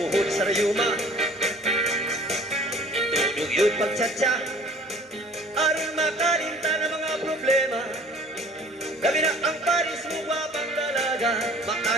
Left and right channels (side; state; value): both; normal; correlation 0.49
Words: sa rayuma. Itulog yun pagtsatsa. Aron makalinta ng mga problema. Gabi na ang paris mo wapang dalaga.